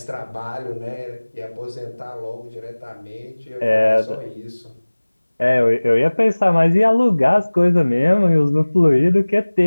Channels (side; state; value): both; inverted; correlation -1.00